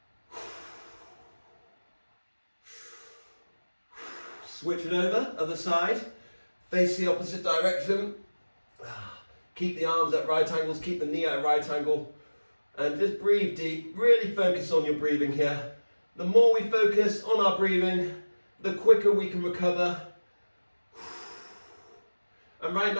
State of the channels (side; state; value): both; inverted; correlation -1.00